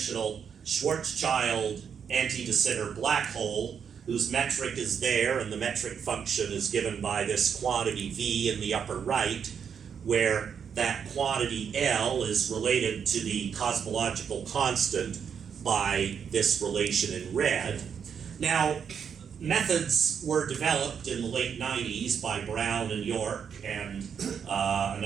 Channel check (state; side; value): quieter; left; 7.3 dB